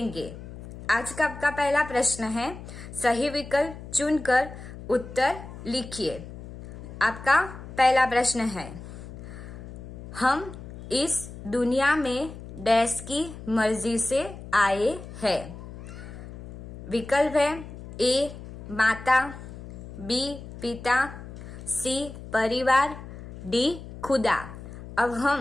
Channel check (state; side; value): noise; left; hum, 13 dB below the sound